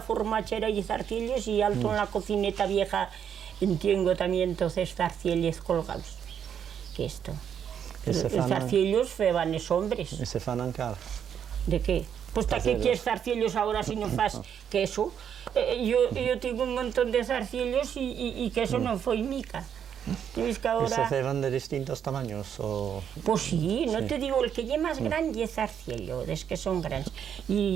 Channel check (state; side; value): quieter; left; 8.5 dB